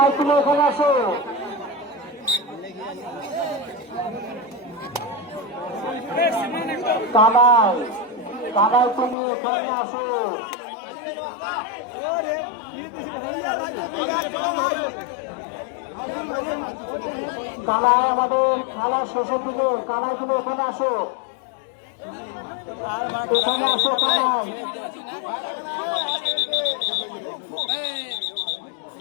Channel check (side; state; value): right; drops out; at 9.2 s